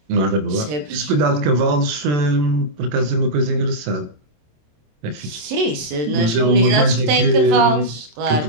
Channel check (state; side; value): late; left; 27 ms